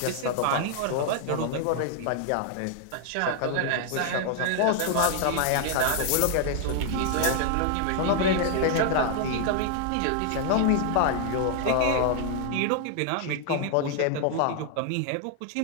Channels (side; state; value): both; different; correlation 0.00